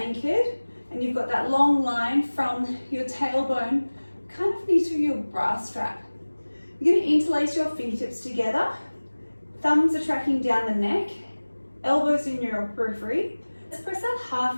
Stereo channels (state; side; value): inverted; both; correlation -1.00